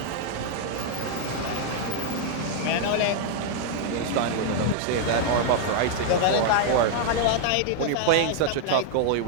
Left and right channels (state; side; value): different; both; correlation 0.00